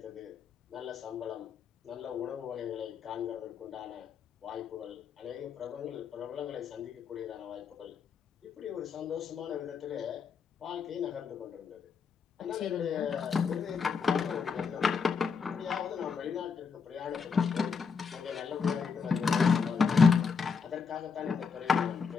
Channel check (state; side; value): quieter; right; 5.7 dB